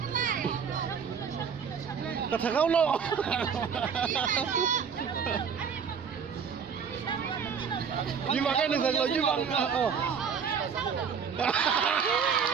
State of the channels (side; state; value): left; quieter; 6.7 dB